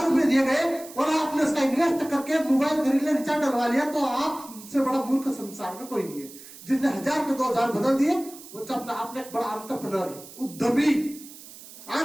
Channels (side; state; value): right; noise; hiss, 17 dB below the sound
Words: रुपए दिए गए और आपने उसका इन्वेस्ट करके मोबाइल खरीद लिया, रिचार्ज डलवा लिया, तो आपसे बड़ा मूर्ख संसार में कोई नहीं है। जिसने 1000 के 2000 बदल दिए वो अपना आपने एक बड़ा एंटरप्रेन्योर है, उद्यमी।